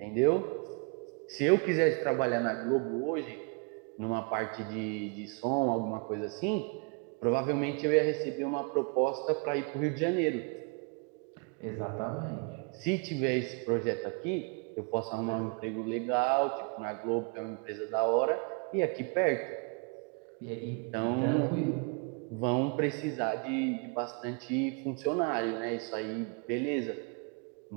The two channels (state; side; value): quieter; left; 33.7 dB